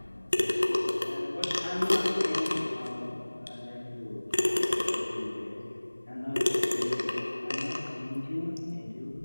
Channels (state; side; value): inverted; both; correlation -1.00